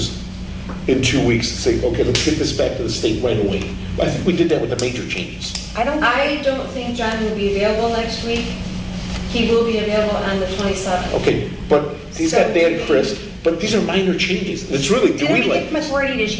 in 2 weeks? Say, okay, let's get this back to the state right away. I think we did that with the major changes. I don't. I don't think John will be available next week. He will be available on the 27th. Okay, but he's got Dan Chris, but these are minor changes. It's really, do Didn't we we give him like, authority to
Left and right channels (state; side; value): identical; both; correlation 1.00